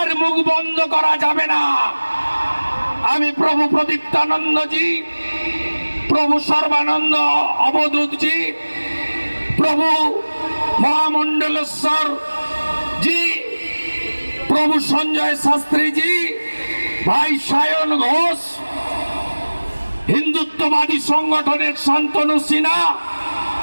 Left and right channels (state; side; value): inverted; both; correlation -1.00